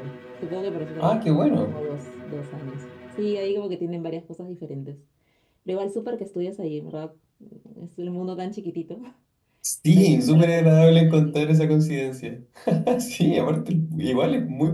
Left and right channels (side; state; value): both; identical; correlation 1.00